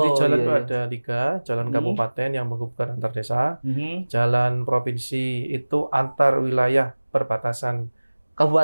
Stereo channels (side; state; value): both; inverted; correlation -1.00